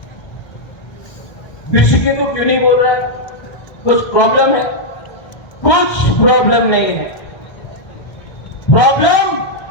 ऋषिकेतु क्यों नहीं बोल रहा है, कुछ प्रॉब्लम है? कुछ प्रॉब्लम नहीं है, प्रॉब्लम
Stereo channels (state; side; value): late; right; 2.1 ms